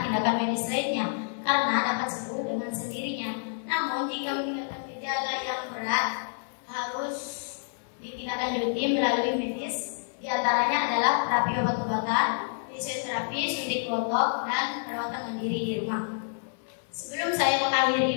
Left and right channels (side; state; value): right; silent; 59 dB below the other